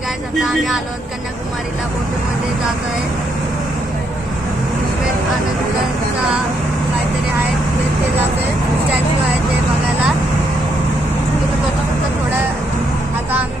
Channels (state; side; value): normal; both; correlation 0.76